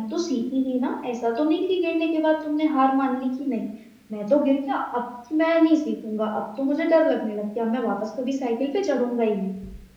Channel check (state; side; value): identical; both; correlation 1.00